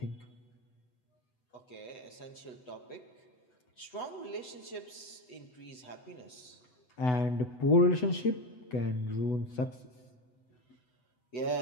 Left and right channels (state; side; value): late; right; 8.0 ms